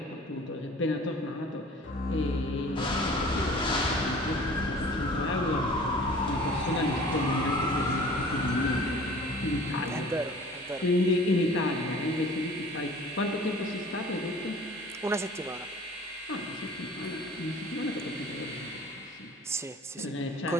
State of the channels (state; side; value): normal; both; correlation 0.46